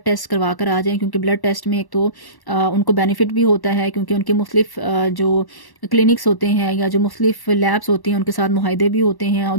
टेस्ट करवा कर आ जाएं, क्योंकि ब्लड टेस्ट में एक तो उनको बेनिफिट भी होता है क्योंकि उनके मुख्तलिफ जो क्लिनिक्स होते हैं या जो मुख्तलिफ लैब्स होती हैं उनके साथ मुहाइदे भी होते हैं। और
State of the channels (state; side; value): late; right; 1.1 ms